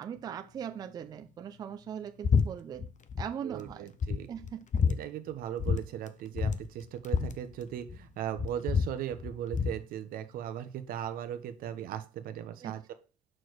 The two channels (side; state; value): both; normal; correlation 0.63